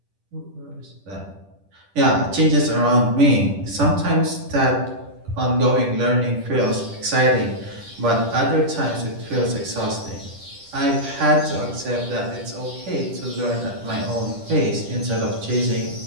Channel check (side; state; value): left; late; 10 ms